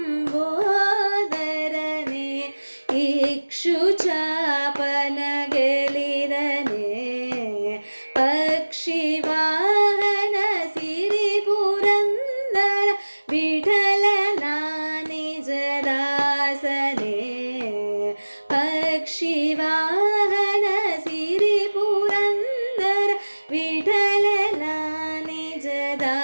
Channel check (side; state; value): both; inverted; correlation -1.00